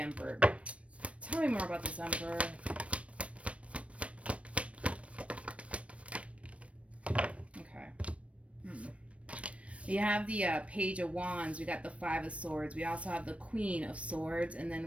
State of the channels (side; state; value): left; late; 0.063 ms